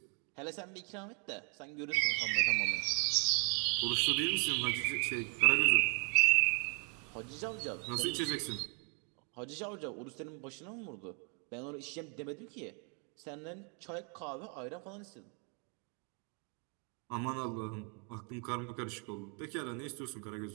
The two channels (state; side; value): quieter; left; 39.3 dB